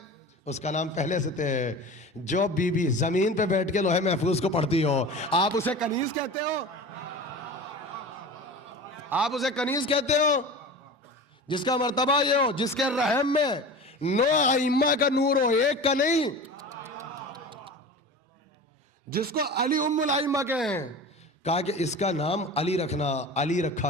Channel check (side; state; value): both; normal; correlation 0.34